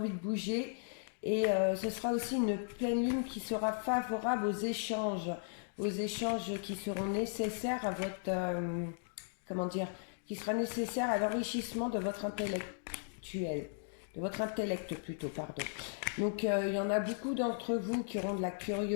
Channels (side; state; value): right; silent; digital silence